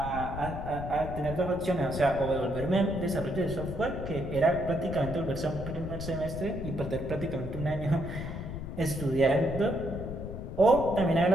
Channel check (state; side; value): noise; left; rumble, 8 dB below the sound